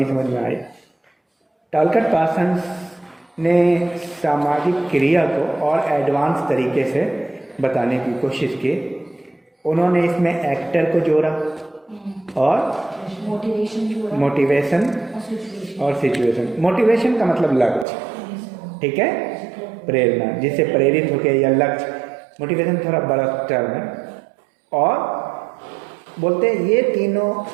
समझ में आई। टॉलकट पार्सन ने सामाजिक क्रिया को और एडवांस तरीके से बताने की कोशिश की। उन्होंने इसमें एक्टर को जोड़ा और मोटिवेशन और सिचुएशन। मोटिवेशन का मतलब लक्ष्य, ठीक है, प्रेरणा, जिससे प्रेरित होकर, या लक्ष्य, मोटिवेशन थोड़ा बड़ा टर्म है। और बोलते हैं ये तीनों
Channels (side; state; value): left; drops out; at 17.9 s